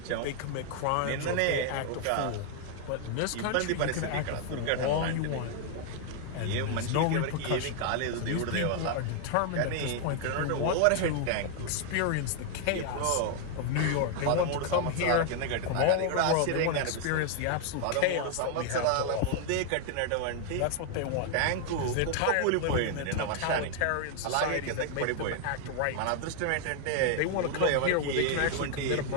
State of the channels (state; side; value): different; both; correlation 0.00